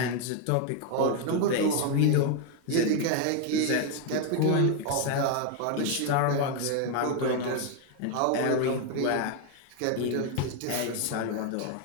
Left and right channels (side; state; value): both; different; correlation 0.01